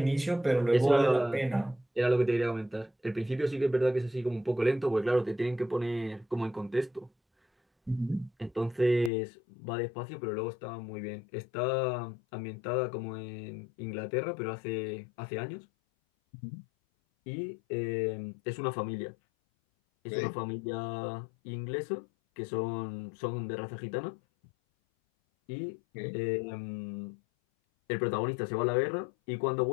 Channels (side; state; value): right; drops out; at 9.1 s